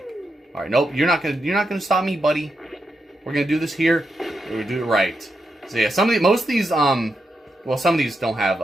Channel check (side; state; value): both; normal; correlation 0.85